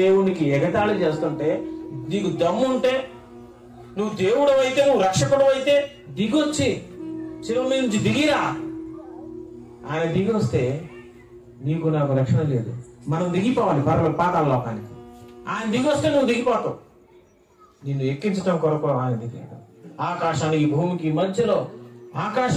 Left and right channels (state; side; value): identical; both; correlation 1.00